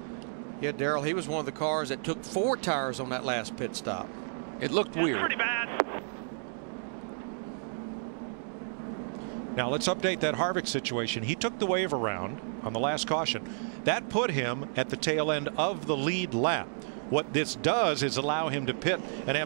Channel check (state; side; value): silent; left; digital silence